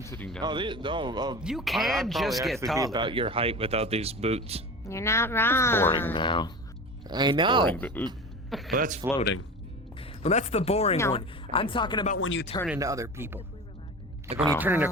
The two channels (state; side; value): normal; both; correlation 0.31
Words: sitting Oh, down. You I'd can probably just get actually be taller. about your height without these boots. You're not wrong. Boring now. I know. Boring, but, Well, that's floating. Well, that's the boring No. one. I'm talking about when you turn into other people. Like when you turn into